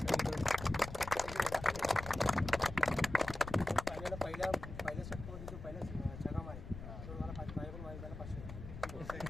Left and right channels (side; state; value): left; noise; rumble, 10 dB below the sound